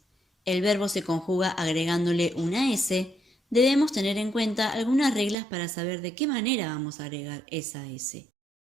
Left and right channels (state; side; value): drops out; left; at 5.4 s